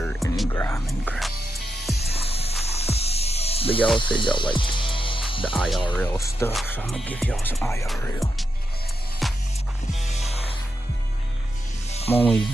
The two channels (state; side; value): normal; both; correlation 0.86